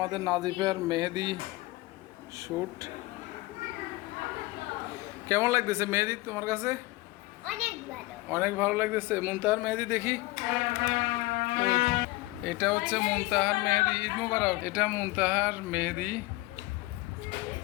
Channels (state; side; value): quieter; right; 20.4 dB